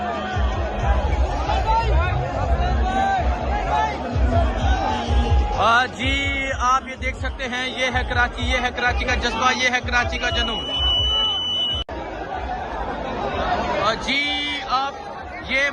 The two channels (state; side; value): identical; both; correlation 1.00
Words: जी आप ये देख सकते हैं, ये है कराची, ये है कराची का जज्बा, ये है कराची का जुनून। जी आप ये